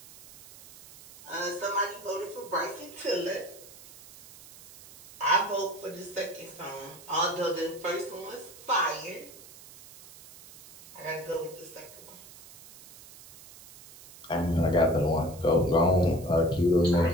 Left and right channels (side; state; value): right; noise; hiss, 19 dB below the sound